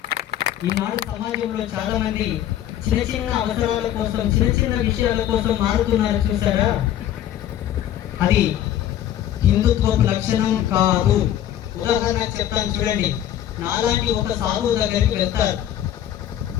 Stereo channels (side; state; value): right; quieter; 11.6 dB